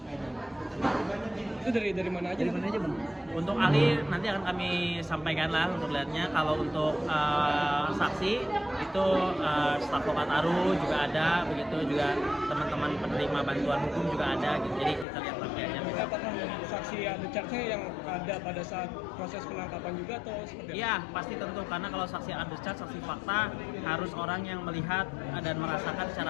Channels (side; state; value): right; drops out; at 15.1 s